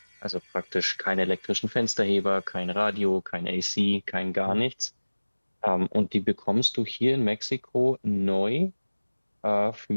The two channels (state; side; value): inverted; both; correlation -1.00